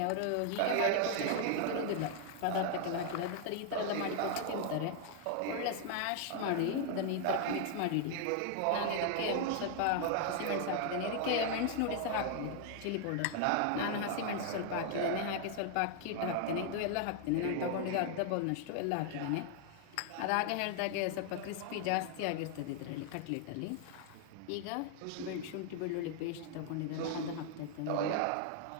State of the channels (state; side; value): different; both; correlation 0.00